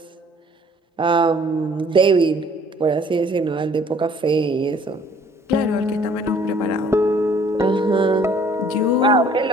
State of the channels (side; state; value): both; normal; correlation 0.57